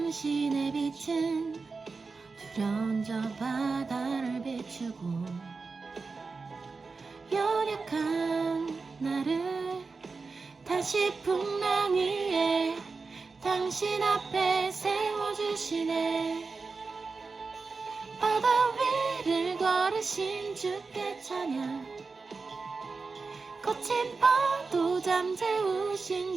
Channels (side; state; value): left; quieter; 4.3 dB